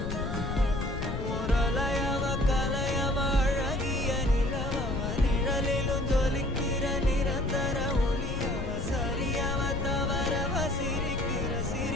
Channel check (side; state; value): left; noise; rumble, 4 dB below the sound